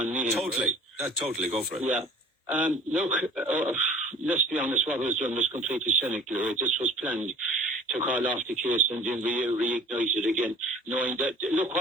Meehan. Totally. Totally. Go for it. Yeah. Look, let's be honest, what was done was completely cynical. Right? This was planned to call off the case and then reignite it again, knowing that, look,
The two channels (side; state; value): both; normal; correlation 0.47